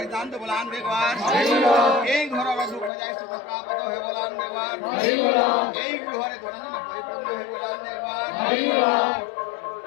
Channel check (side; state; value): right; drops out; at 2.9 s